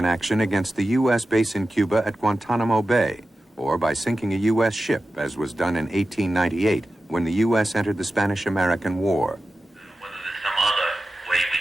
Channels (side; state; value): both; normal; correlation 0.93